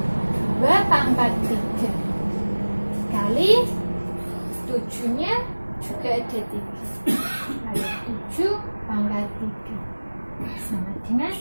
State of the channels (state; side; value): inverted; both; correlation -1.00